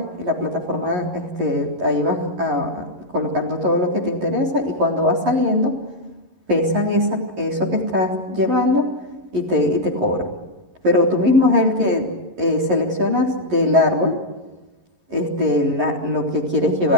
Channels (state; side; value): late; left; 11 ms